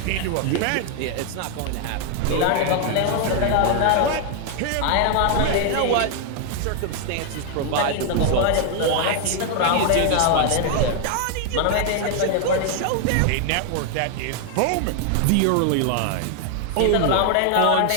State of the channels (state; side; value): different; both; correlation 0.00